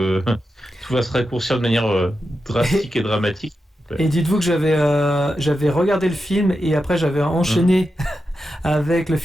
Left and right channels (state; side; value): normal; both; correlation 0.89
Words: tout va se raccourcir de manière drastique et dramatique. Et dites-vous que j'avais regardé le film et après j'avais enchaîné avec le